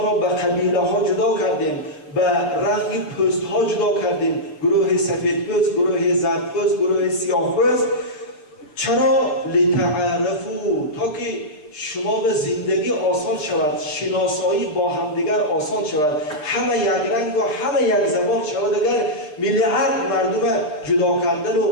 را به قبیله ها جدا کردیم، به رنگ پوست ها جدا کردیم، گروه سفید پوست، گروه زرد پوست، گروه سیاه پوست. چرا؟ لتعارفوا، تا که شما به زندگی آسان شود، شناسایی با همدیگر آسان شود، همه یک رنگ و همه یک زبان شود. اگر میلیارد مردم جدا کردن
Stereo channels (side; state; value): right; late; 6.8 ms